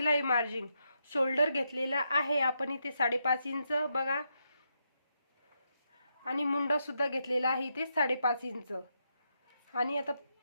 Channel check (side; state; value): both; inverted; correlation -0.82